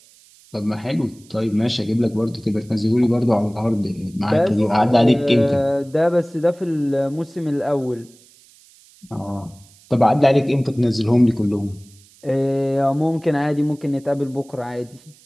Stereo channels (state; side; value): noise; right; hiss, 27 dB below the sound